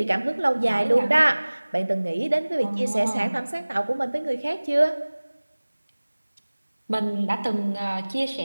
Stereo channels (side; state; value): both; inverted; correlation -1.00